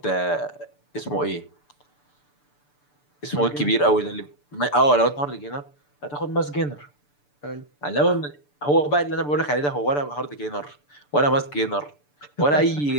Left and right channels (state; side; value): late; right; 6.8 ms